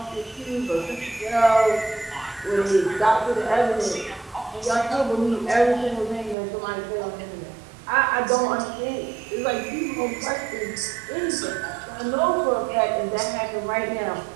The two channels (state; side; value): drops out; left; at 6.4 s